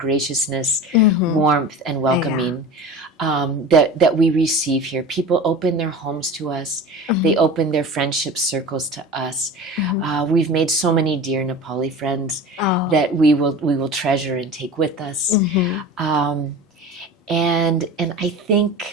warmth, and welcoming that we receive here. People open their homes to us. They open their friendship circles to us. We've made so many dear Nepali friends that we will treasure and take with us. And I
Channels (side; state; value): both; normal; correlation 0.34